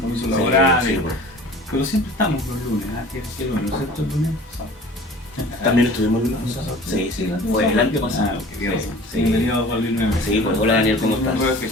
laborales, sí. Pero siempre estamos los lunes, ¿qué lunes? ¿No es cierto el lunes? También estuvimos el lunes. Sí, fue el año pasado. Bienvenido Juan Luis nuevamente. Sí, pues hola Daniel, ¿cómo estás?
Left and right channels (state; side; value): normal; both; correlation 0.44